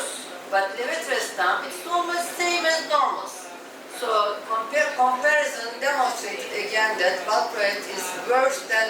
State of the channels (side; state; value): both; identical; correlation 1.00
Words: But levetrestan it's almost same as normal. So comparison demonstrated again that valproate is worse